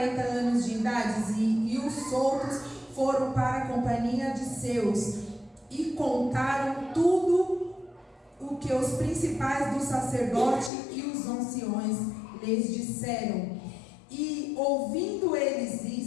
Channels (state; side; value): drops out; right; at 10.7 s